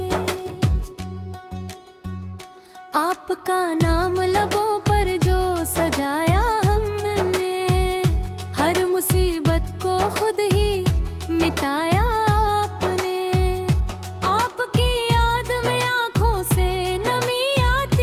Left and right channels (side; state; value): both; identical; correlation 1.00